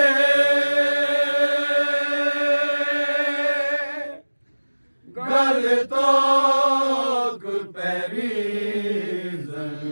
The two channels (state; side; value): inverted; both; correlation -1.00